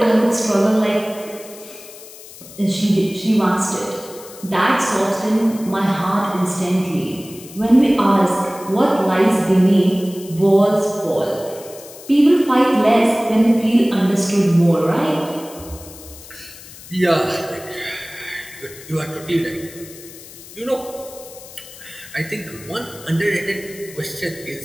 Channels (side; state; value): left; noise; hiss, 17 dB below the sound